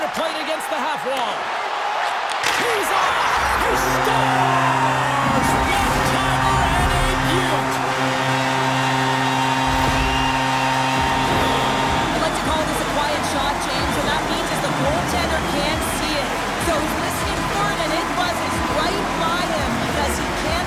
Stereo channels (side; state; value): both; identical; correlation 1.00